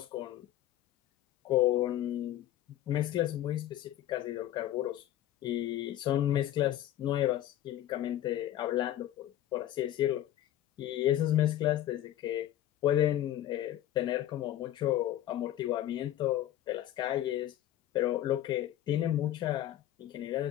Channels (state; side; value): quieter; right; 12.9 dB